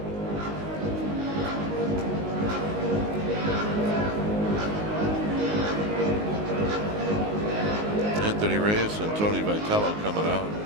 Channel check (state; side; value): late; left; 19 ms